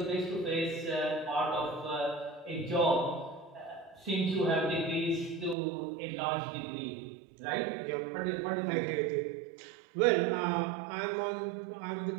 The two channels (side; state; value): left; drops out; at 5.6 s